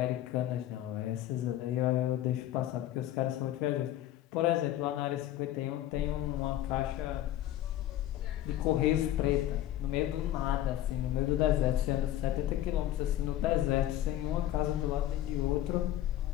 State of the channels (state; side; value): quieter; right; 12.9 dB